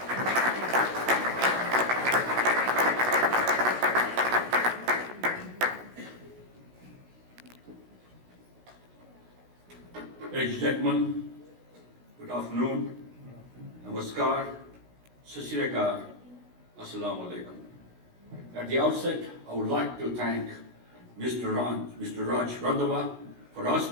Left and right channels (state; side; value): late; left; 16 ms